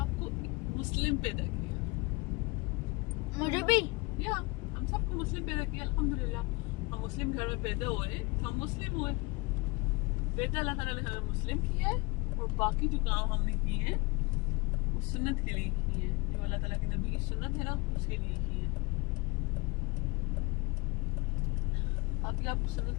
मुस्लिम पैदा किया मुझे भी या हम सबको मुस्लिम पैदा किया अल्हम्दुलिल्लाह। हम मुस्लिम घर में पैदा हुए, हम मुस्लिम हुए। पैदा अल्लाह ताला ने हमें मुस्लिम किया है और बाकी जो काम हमने किए हैं वो सुन्नत के लिए किए हैं, जो अल्लाह ताला के नबी की सुन्नत है ना उसके लिए किए हैं। अभी आपको सुन्नत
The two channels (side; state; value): right; quieter; 26.1 dB